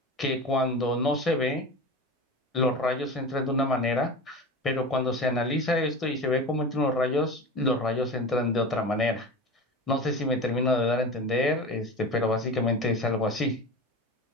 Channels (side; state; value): both; normal; correlation 0.29